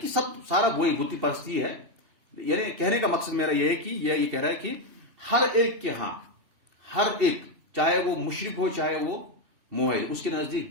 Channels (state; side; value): late; left; 2.7 ms